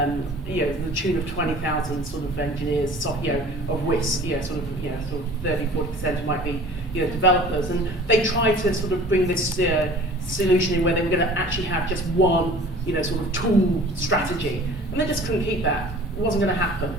tune of 20,000 sort of engineers, of which sort of 30-40% might be developers, and they try to sort of bring this solution in where they were going to actually have just one sort of tool strategy, and they just couldn't keep that. It wasn't going to happen,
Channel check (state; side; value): normal; both; correlation 0.45